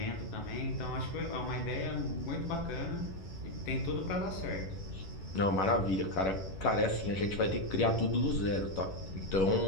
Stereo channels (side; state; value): right; late; 11 ms